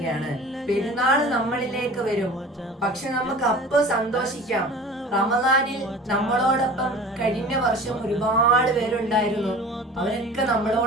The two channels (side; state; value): both; normal; correlation 0.41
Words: പെരുന്നാൾ നമ്മളിലേക്ക് വരും. പക്ഷെ നമുക്ക് അപ്പൊ സന്തോഷിക്കാം. റമദാനിൽ നമ്മളോടൊപ്പം കഴിഞ്ഞ വർഷം ഒരുപാട് പേരുണ്ടായിരുന്നു. അവരൊക്കെ